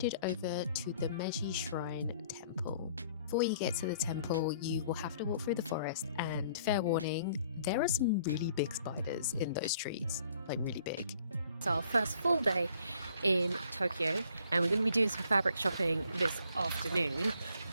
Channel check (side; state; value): both; inverted; correlation -0.60